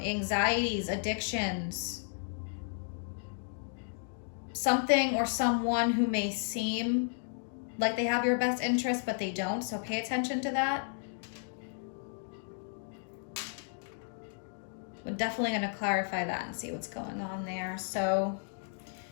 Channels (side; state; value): right; silent; digital silence